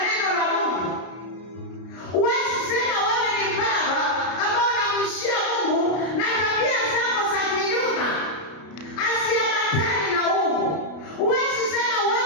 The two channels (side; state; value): right; late; 33 ms